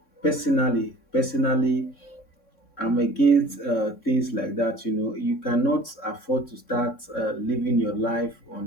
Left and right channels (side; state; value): right; late; 3.6 ms